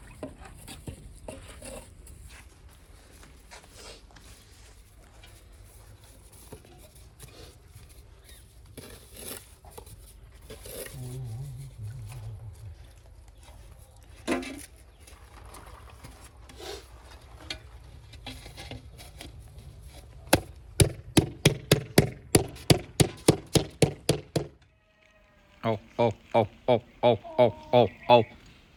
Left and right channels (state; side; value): identical; both; correlation 1.00